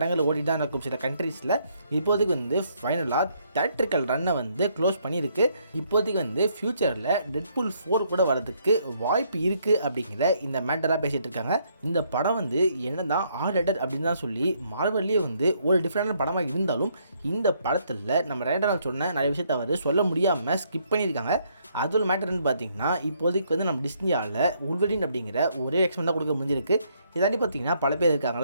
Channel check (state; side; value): inverted; both; correlation -0.70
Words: ஓடி தான் இருக்கும் சில கண்ட்ரீஸில். இப்போதைக்கு வந்து ஃபைனலாக தியேட்ரிக்கல் ரன்னை வந்து க்ளோஸ் பண்ணியிருக்கு. இப்போதைக்கு வந்து ஃப்யூச்சரில் டெட்பூல் 4 கூட வரதுக்கு வாய்ப்பு இருக்குது அப்படிங்கிற இந்த மேட்டராக பேசிகிட்டு இருக்காங்க. இந்த படம் வந்து என்ன தான் ஆர்டர் அப்படின்னு தான் சொல்லி மார்வல்லே வந்து ஒரு டிஃப்ரெண்டான படமாக இருந்தாலும் இந்த படத்தில் நம்ம ரேண்டரால் சொன்ன நிறைய விஷயத்தை அவர் சொல்ல முடியாமல் ஸ்கிப் பண்ணியிருக்காங்க. அதோட மேட்டர்னு பார்த்தீங்கன்னா இப்போதைக்கு வந்து நம்ம டிஸ்னியாவில் உல்வரின் அப்படிங்கிற ஒரே எக்ஸ்மெண்ட் தான் கொடுக்க முடிஞ்சிருக்கு. இதாண்டி பார்த்தீங்கன்னா பல பேர்